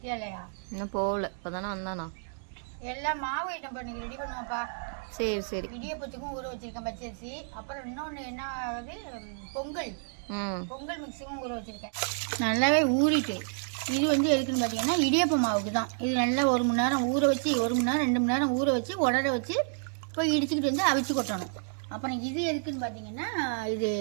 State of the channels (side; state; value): left; silent; digital silence